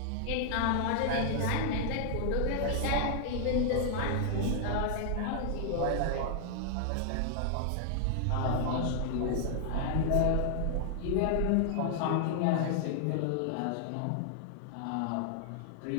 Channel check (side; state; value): both; different; correlation -0.01